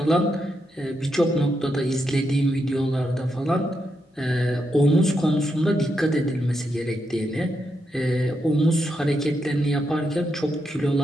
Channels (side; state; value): both; normal; correlation 0.82